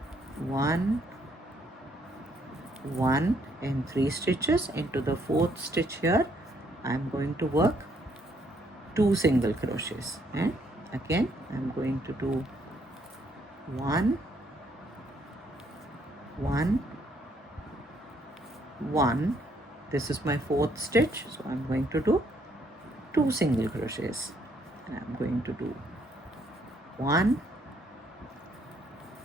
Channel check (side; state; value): both; normal; correlation 0.69